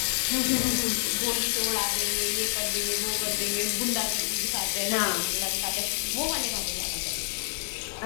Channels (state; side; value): silent; right; digital silence